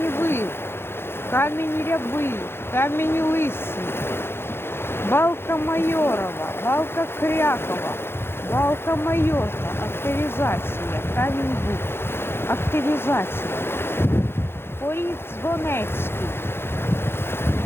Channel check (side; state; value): right; late; 0.11 ms